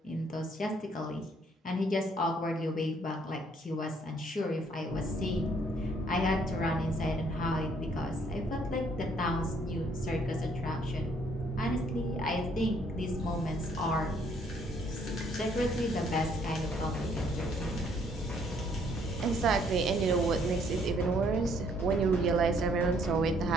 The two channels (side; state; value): both; normal; correlation 0.65